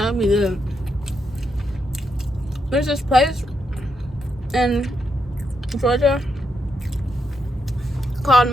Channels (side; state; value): both; normal; correlation 0.81